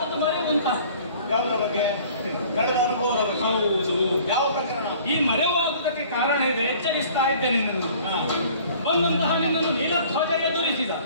ಮರೆವು ಅಂತ. ಯಾವುದರ ಬಗ್ಗೆ? ಕಳೆದ ಅನುಭವದ ಬಗ್ಗೆ. ಹೌದು. ಯಾವ ಪ್ರಕರಣ? ಈ ಮರೆವಾಗುವುದಕ್ಕೆ ಕಾರಣ ಇದೆ. ಎಚ್ಚರಿಸ್ತಾ ಇದ್ದೇನೆ ನಿನ್ನನ್ನು. ಬಂದಂತಹ ನಿನ್ನನ್ನು ನೀಲಧ್ವಜ ಎದುರಿಸಿದ.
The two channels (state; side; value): inverted; both; correlation -0.51